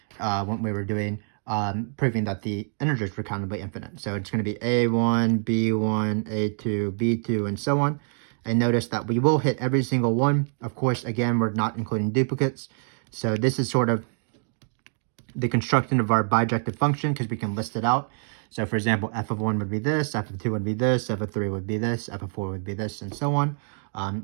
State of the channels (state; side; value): silent; left; 61 dB below the other